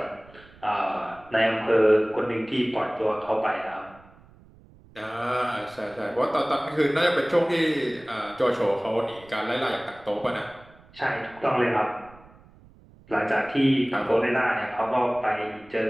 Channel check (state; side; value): noise; right; rumble, 25 dB below the sound